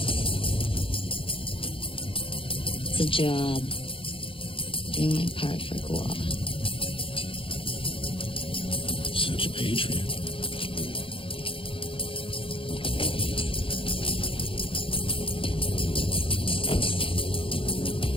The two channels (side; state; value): right; late; 0.26 ms